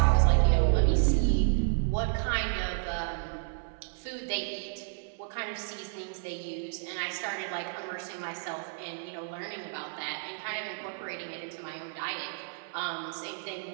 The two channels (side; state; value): left; silent; 57 dB below the other